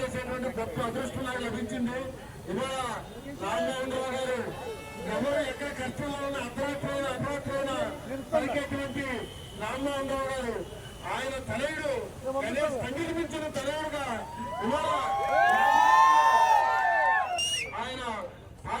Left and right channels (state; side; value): identical; both; correlation 1.00